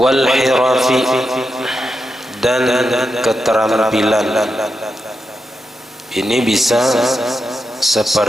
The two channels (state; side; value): normal; both; correlation 0.87